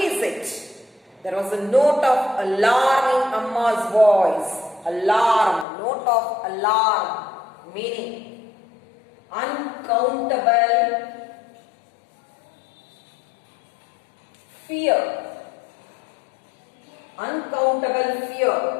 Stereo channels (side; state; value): right; drops out; at 5.7 s